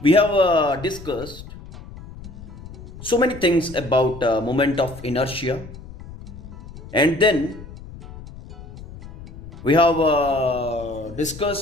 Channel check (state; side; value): noise; left; rumble, 15 dB below the sound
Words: we have discussed so many things about moment of inertia, and then we have